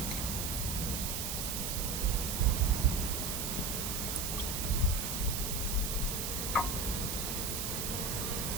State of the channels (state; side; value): noise; right; hiss, 2 dB below the sound